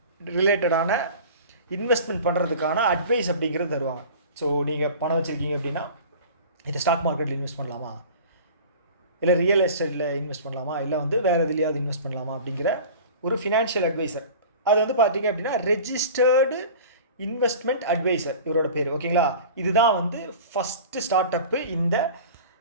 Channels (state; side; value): inverted; both; correlation -0.39